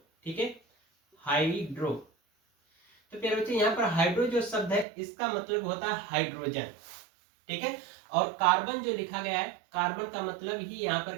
ठीक है, हाइड्रो। तो प्यारे बच्चों, यहाँ पर हाइड्रो जो शब्द है इसका मतलब होता है हाइड्रोजन, ठीक है। और कार्बन जो लिखा गया है, कार्बन का मतलब ही यहाँ पर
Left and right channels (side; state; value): left; drops out; at 4.9 s